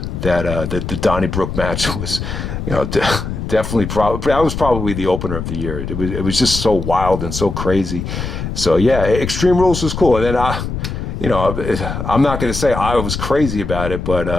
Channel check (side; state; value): left; noise; rumble, 5 dB below the sound